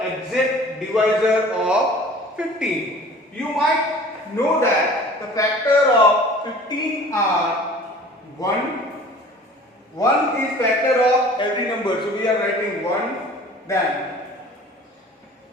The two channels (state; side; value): normal; both; correlation 0.46